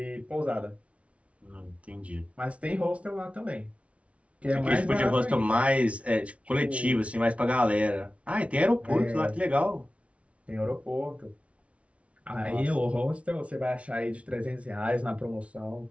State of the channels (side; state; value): left; late; 0.063 ms